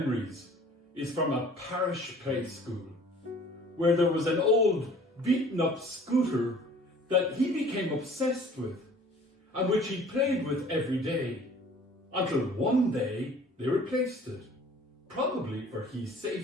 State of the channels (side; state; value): both; normal; correlation 0.50